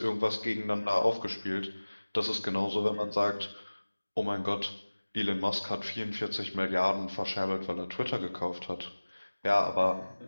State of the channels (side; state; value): both; inverted; correlation -1.00